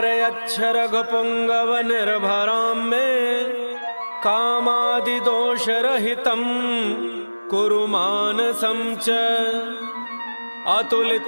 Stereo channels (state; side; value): inverted; both; correlation -1.00